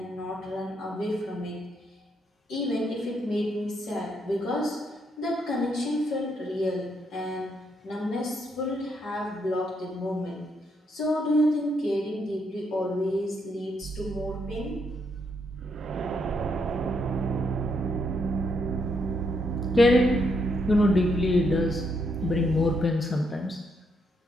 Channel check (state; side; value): normal; both; correlation 0.76